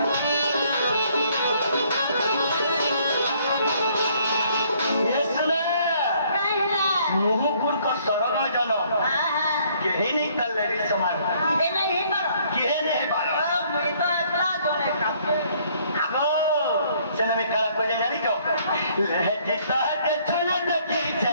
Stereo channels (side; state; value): both; inverted; correlation -0.64